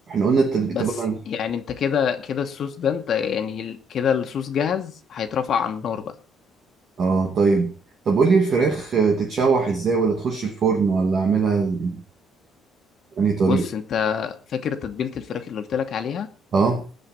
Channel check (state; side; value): normal; both; correlation 0.69